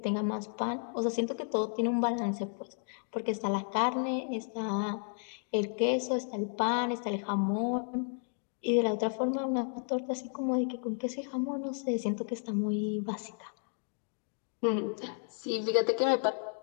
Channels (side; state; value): right; silent; 56 dB below the other